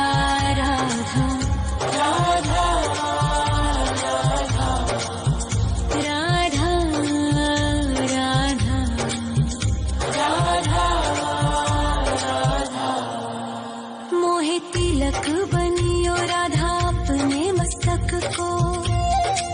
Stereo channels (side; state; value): both; identical; correlation 1.00